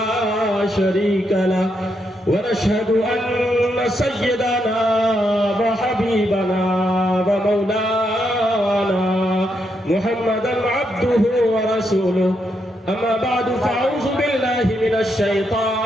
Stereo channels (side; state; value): both; normal; correlation 0.80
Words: شريك له ونشهد أن سيدنا وحبيبنا ومولانا محمدا عبده ورسوله أما بعد فأعوذ بالله من